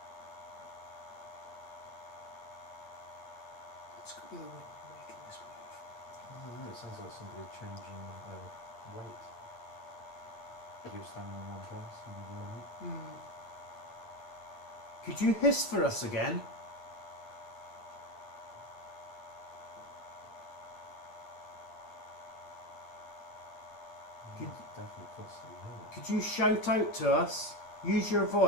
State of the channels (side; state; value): right; late; 8.5 ms